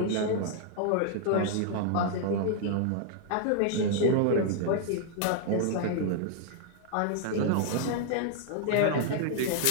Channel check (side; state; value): both; different; correlation -0.01